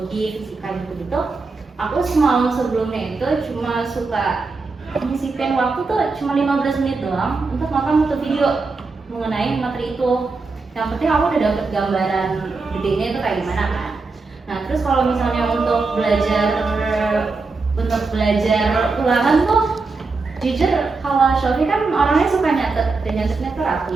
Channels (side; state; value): left; quieter; 4.0 dB